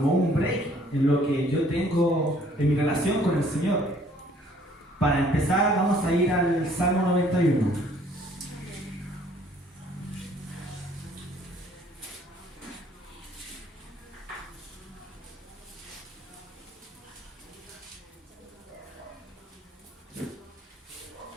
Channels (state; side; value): normal; both; correlation 0.59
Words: un break en lo que yo tengo en mi relación con el Señor. Para empezar, vamos a ir al Salmo 91.